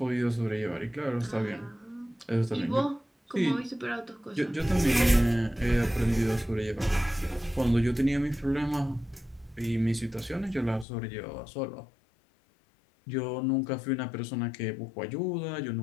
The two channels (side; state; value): right; drops out; at 10.9 s